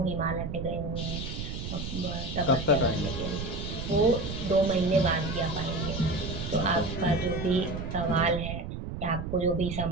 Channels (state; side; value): noise; right; rumble, 6 dB below the sound